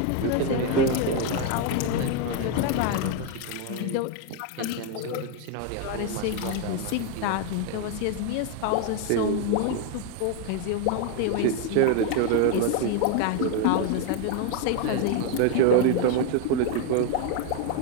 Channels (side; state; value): both; different; correlation 0.01